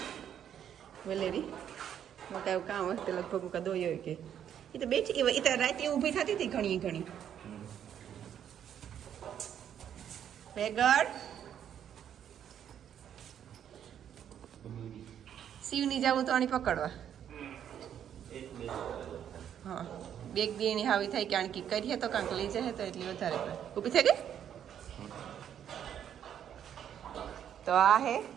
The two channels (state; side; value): quieter; left; 9.5 dB